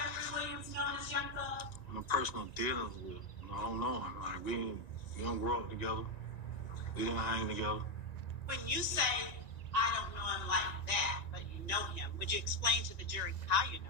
Williams, known as Young Thugg? No personal dealings with him. I don't know him. Like, we don't grow up together. We didn't hang together. When you say, I don't know him like that, but you know him, would you explain to the jury how you know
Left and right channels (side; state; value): right; late; 1.9 ms